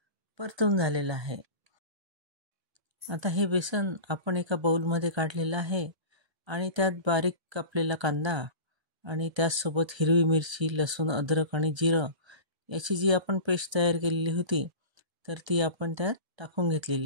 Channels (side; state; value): left; late; 1.3 ms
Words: परतून झालेलं आहे. आता हे बेसन आपण एका बाउलमध्ये काढलेलं आहे आणि त्यात बारीक कापलेला कांदा आणि त्याचसोबत हिरवी मिरची, लसूण, अद्रक आणि जिरं याची जी आपण पेस्ट तयार केलेली होती तर ती आपण त्यात टाकून